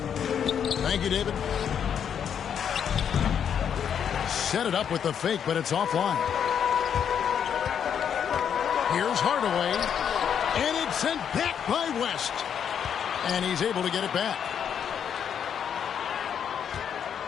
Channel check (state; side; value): quieter; right; 8.2 dB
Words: Thank you, David. set it up with the fake, but it's offline. Here's Hardaway, and it's sent back by West. And he's able to get it back.